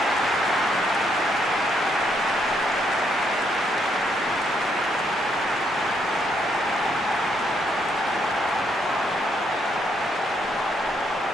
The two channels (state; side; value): normal; both; correlation 0.74